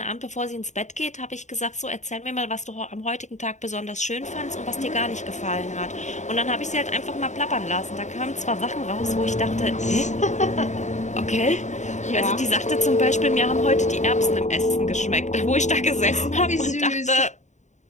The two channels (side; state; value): right; late; 0.34 ms